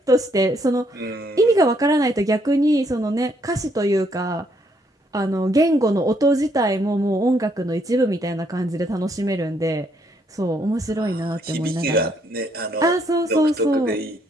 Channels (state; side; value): normal; both; correlation 0.71